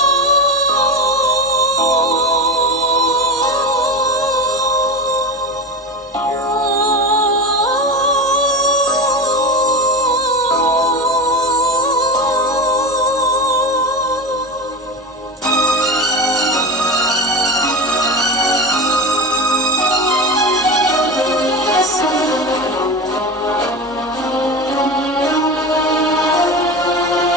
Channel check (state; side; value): normal; both; correlation 0.24